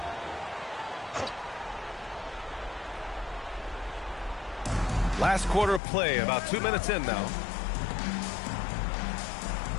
Last quarter of play, about 2 minutes in now.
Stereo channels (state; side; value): drops out; right; at 5.8 s